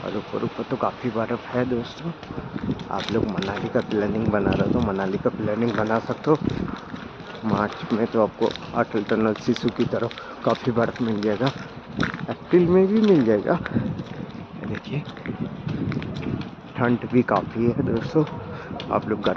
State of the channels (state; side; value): identical; both; correlation 1.00